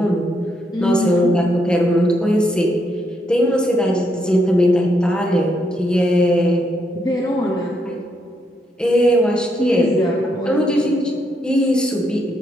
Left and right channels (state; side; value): normal; both; correlation 0.77